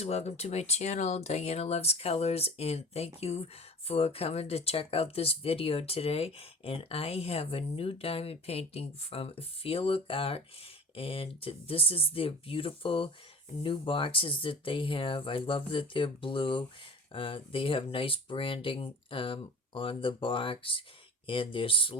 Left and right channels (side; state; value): both; normal; correlation 0.39